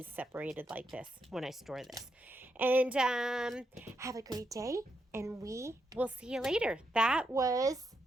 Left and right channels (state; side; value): normal; both; correlation 0.82